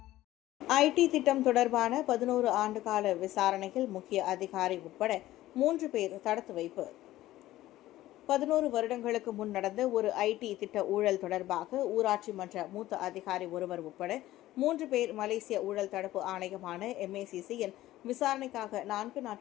ஐடி திட்டம் தொடர்பான 11 ஆண்டுகால விசாரணையில் முக்கிய அதிகாரி உட்பட 3 பேர் தடுத்து வைப்பு. 11 வருடங்களுக்கு முன் நடந்த ஒரு ஐடி திட்ட ஊழல் தொடர்பாக ஊராட்சி மன்ற மூத்த அதிகாரி ஒருவர் உட்பட 3 பேர் மலேசிய ஊழல் தடுப்பு ஆணையமான MACCயின் விசாரணைக்காக 4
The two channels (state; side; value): quieter; right; 15.4 dB